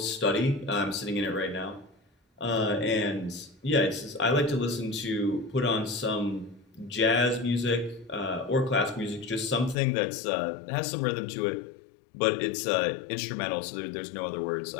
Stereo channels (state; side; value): drops out; right; at 9.8 s